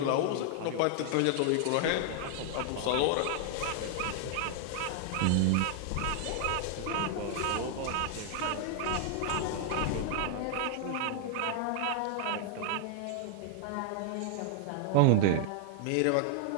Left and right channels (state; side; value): different; both; correlation 0.00